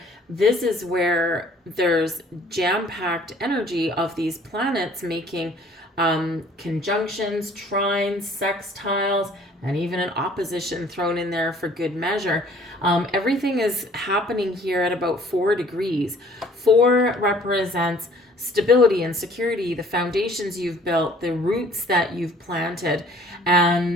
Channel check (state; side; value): normal; both; correlation 0.55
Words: this is where there's jam-packed energy of these planets making conjunctions, trines, sextiles, and even an opposition thrown in there for good measure. Everything is happening here at about 4 degrees. 4 represents stability and security, the foundations you've built, the roots that you've planted.